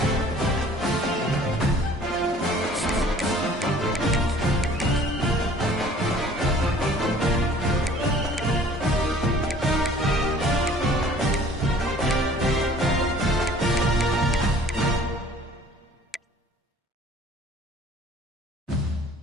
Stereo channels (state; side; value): normal; both; correlation 0.52